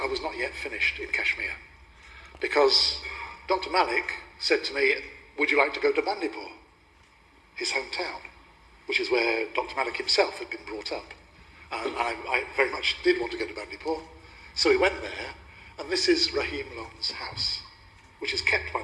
was not yet finished in Kashmir, because Dr. Malik said to me, would you like to go to Bandipur, his hometown, which is where Dr. Malik himself had been brought up. And I very much did want to go to Bandipur. So we went there, and this is Rahim Lone's house, which is kept by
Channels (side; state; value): both; identical; correlation 1.00